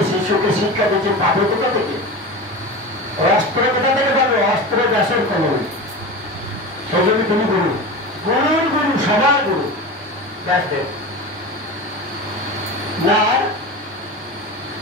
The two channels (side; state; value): both; normal; correlation 0.28